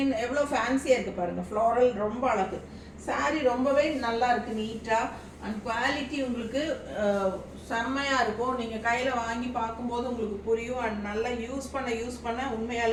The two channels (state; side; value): identical; both; correlation 1.00